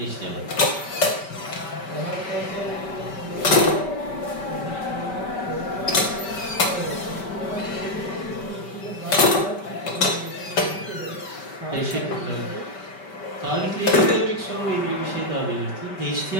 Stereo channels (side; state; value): right; late; 5.2 ms